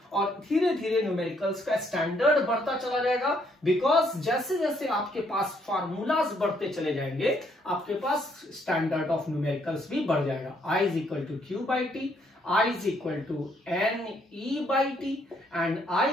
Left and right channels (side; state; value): both; normal; correlation 0.70